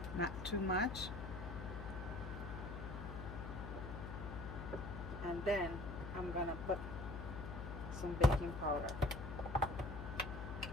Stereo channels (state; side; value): noise; left; hum, 7 dB below the sound